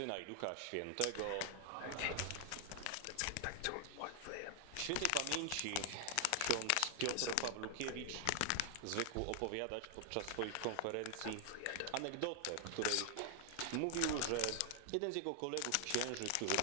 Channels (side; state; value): both; different; correlation 0.00